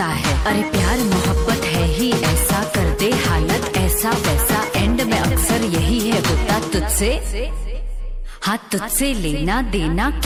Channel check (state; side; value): identical; both; correlation 1.00